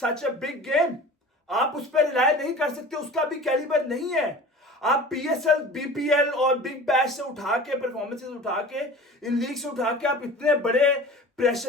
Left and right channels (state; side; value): normal; both; correlation 0.39